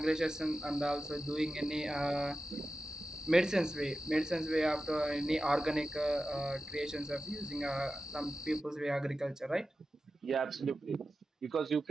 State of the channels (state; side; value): normal; both; correlation 0.93